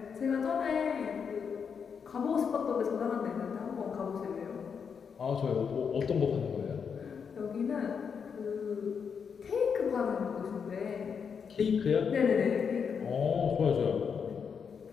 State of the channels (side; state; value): right; quieter; 6.5 dB